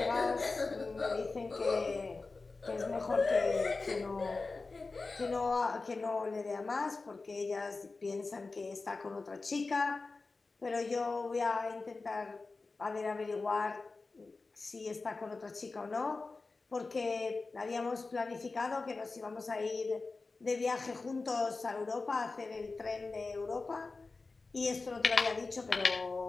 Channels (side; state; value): right; quieter; 3.8 dB